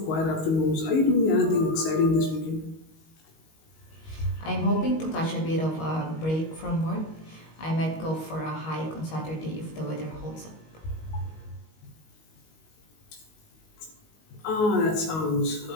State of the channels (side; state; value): right; late; 19 ms